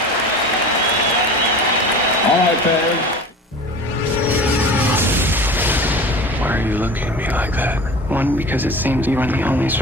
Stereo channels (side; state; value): both; normal; correlation 0.37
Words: All right, Barry. Why are you looking at me like that? 1, because it seems you are the only